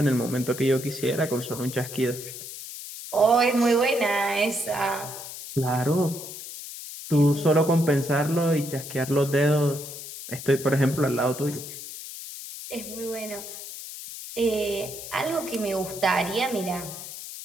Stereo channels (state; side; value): noise; left; hiss, 11 dB below the sound